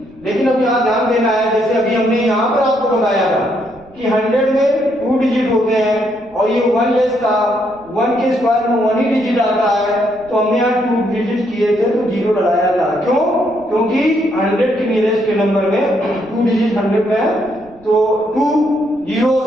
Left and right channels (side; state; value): right; noise; rumble, 27 dB below the sound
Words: लेकिन अब यहाँ ध्यान देना है जैसे अभी हमने यहाँ पर आपको बताया था कि 100 में 2 डिजिट होते हैं और ये 1 लेस था, 1 के स्क्वायर में 1 ही डिजिट आता है, तो हमने यहाँ 2 डिजिट किए थे तो 0 लगाया था, क्यों क्योंकि 100 के नियरेस्ट के नंबर में 2 डिजिट 100 में है तो 2 जीरोस